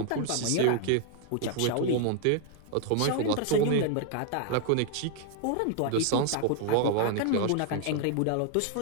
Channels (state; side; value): different; both; correlation 0.00